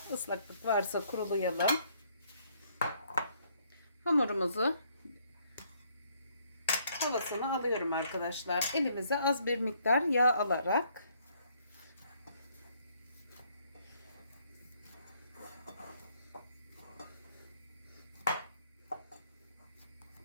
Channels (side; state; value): both; inverted; correlation -0.67